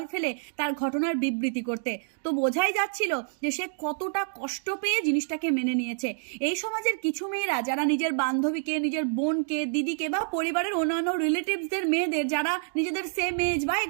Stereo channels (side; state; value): left; silent; digital silence